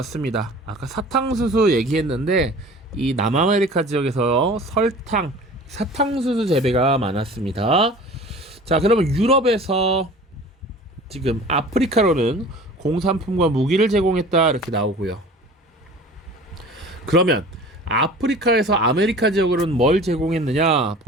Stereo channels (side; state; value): both; normal; correlation 0.42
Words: 아까 사탕수수 얘기했는데 이 남아메리카 지역에서 설탕, 사탕수수 재배가 많았습니다. 자, 그러면 유럽에서 지금 아프리카로는 공산품과 무기를 제공했다 이렇게 나오고요. 그러면 아프리카에서 아메리카 지역으로는 뭘 제공했느냐?